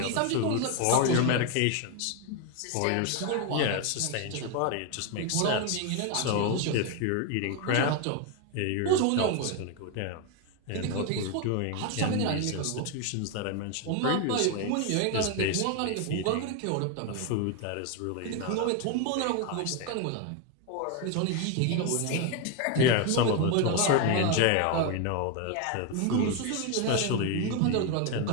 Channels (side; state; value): both; different; correlation 0.01